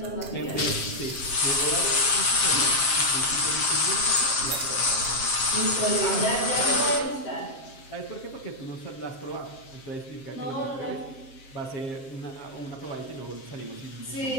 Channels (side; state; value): right; late; 7.5 ms